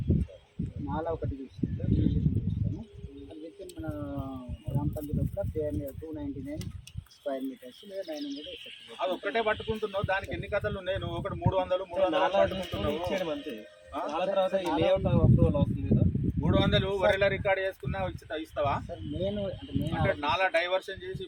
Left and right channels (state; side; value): identical; both; correlation 1.00